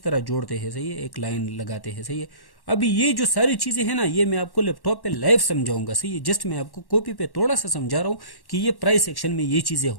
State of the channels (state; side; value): late; right; 1.1 ms